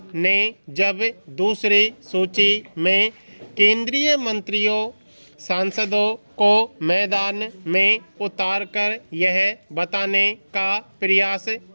ने जब दूसरी सूची में केंद्रीय मंत्रियों, सांसदों को मैदान में उतारकर यह बताने का प्रयास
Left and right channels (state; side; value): inverted; both; correlation -1.00